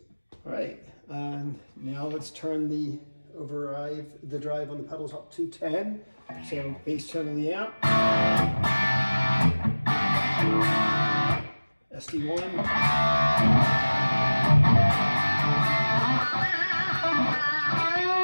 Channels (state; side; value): inverted; both; correlation -1.00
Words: All right, and now let's turn the drive on the pedals up to 10. So bass tone of the amp. SD-1.